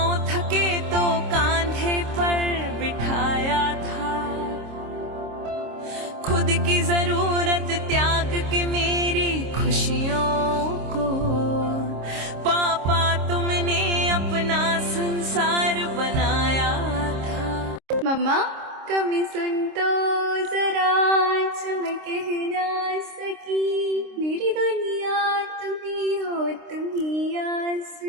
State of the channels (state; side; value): late; left; 26 ms